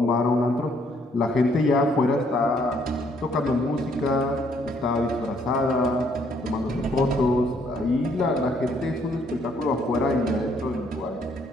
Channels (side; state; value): both; normal; correlation 0.67